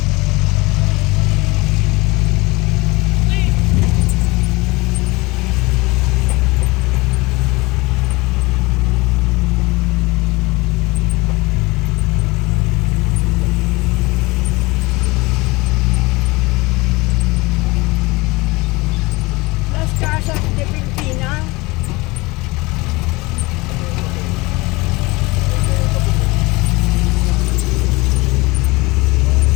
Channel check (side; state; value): right; quieter; 23.3 dB